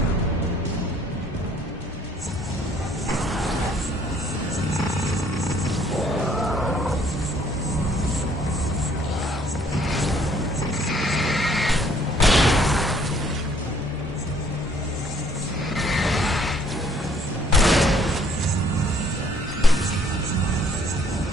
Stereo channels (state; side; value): normal; both; correlation 0.61